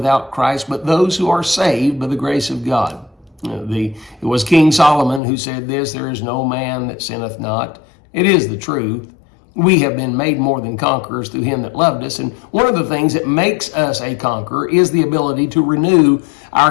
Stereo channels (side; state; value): right; drops out; at 5.2 s